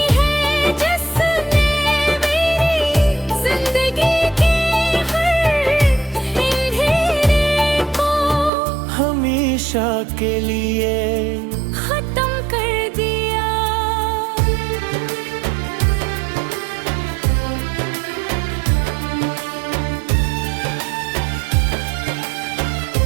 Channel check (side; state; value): left; drops out; at 8.5 s